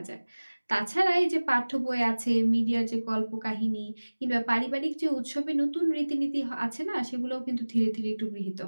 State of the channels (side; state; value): both; inverted; correlation -1.00